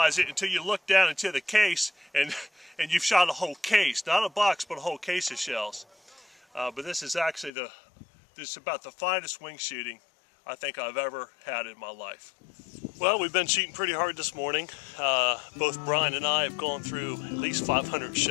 it until you look down into the case, and you've shot a whole case, not a box, but a whole case of shells. But this is actually this is about the finest wing shooting I think I've ever had in my life. Well, we've been shooting pretty hard this morning. Both Brian and I have gone through at least 500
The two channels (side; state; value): right; drops out; at 7.5 s